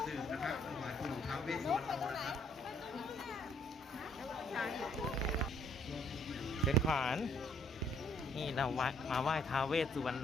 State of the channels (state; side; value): normal; both; correlation 0.65